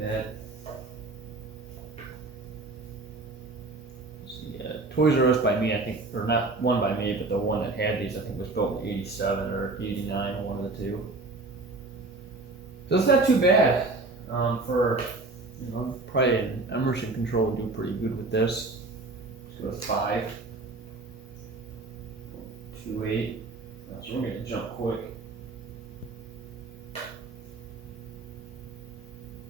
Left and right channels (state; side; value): quieter; left; 3.3 dB